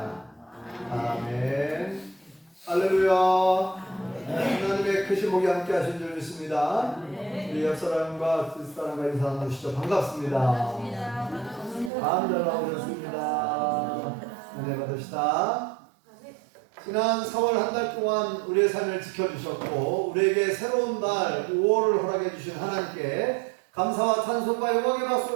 아멘. 할렐루야. 하나님의 크신 복이 함께 하신 줄 믿습니다. 우리 옆사람과 뒷사람과 인사 나누시죠. 반갑습니다. 잘 나오셨습니다. 은혜 받읍시다. 지난 4월 한 달 동안 우리의 삶을 지켜주셨고 우리에게 새로운 날 5월을 허락해 주신 하나님께 감사와 찬송과 영광의 박수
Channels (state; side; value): drops out; left; at 11.9 s